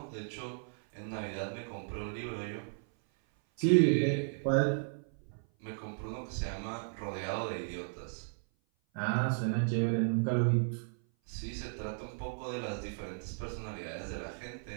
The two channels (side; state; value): left; silent; 54 dB below the other